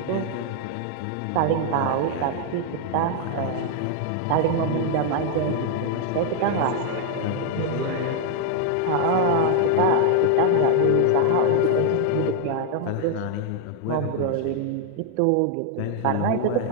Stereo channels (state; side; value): different; both; correlation 0.00